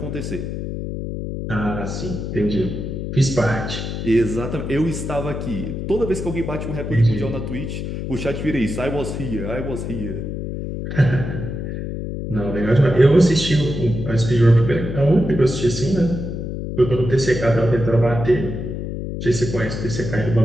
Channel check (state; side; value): noise; left; hum, 5 dB below the sound